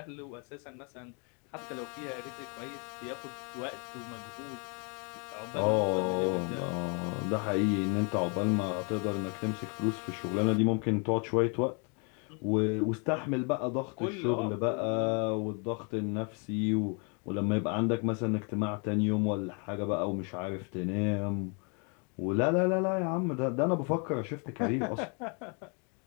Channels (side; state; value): right; quieter; 36.5 dB